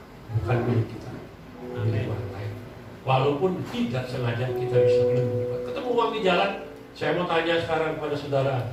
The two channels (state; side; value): identical; both; correlation 1.00